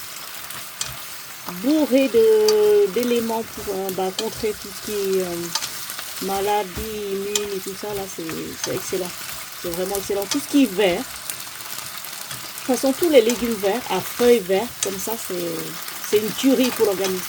Bourré d'éléments pour contrer tout ce qui est maladie, immune et tout ça, là c'est excellent. C'est vraiment excellent. Tout ce qui est vert, de toute façon tous les légumes verts, à feuilles vertes, comme ça c'est une tuerie pour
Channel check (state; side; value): identical; both; correlation 1.00